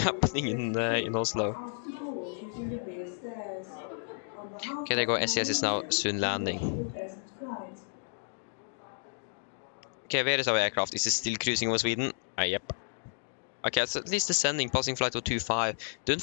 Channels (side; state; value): right; silent; digital silence